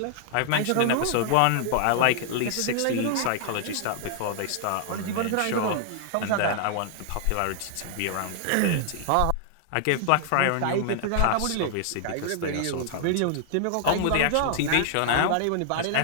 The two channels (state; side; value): different; both; correlation 0.00